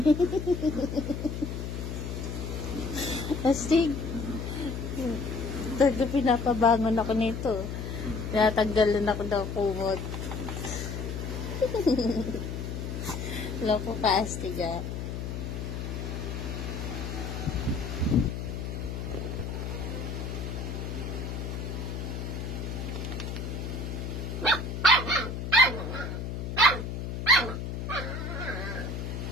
Astig. Talaga pinapabangon ako nito. Tinatanggalan ako ng kumot. Loko ka, astiga.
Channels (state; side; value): noise; left; hum, 5 dB below the sound